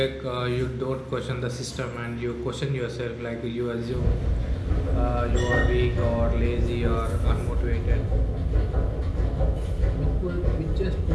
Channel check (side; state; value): both; identical; correlation 1.00